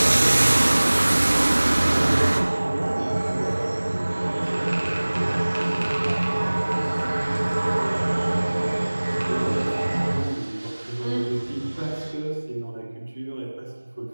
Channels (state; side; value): inverted; both; correlation -1.00